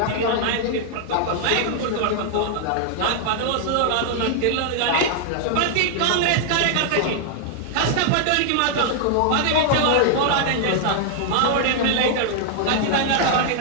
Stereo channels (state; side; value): different; both; correlation 0.00